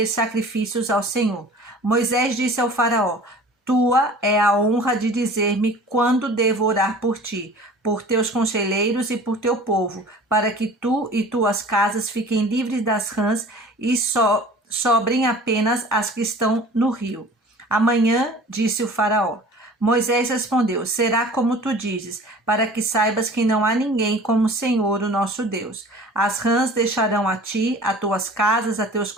sacrifícios ao Senhor. Moisés disse ao faraó: tua é a honra de dizer-me quando devo orar por ti, por teus conselheiros e por teu povo, para que tu e tuas casas fiquem livres das rãs e sobrem apenas as que estão no rio. Amanhã, disse o faraó. Moisés respondeu: será como tu dizes, para que saibas que não há ninguém como o Senhor, o nosso Deus. As rãs deixarão a ti, a tuas casas, a teus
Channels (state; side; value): normal; both; correlation 0.44